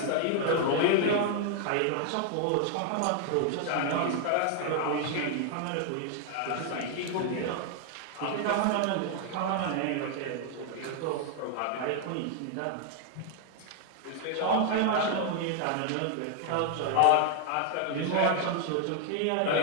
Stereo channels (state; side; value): different; both; correlation 0.00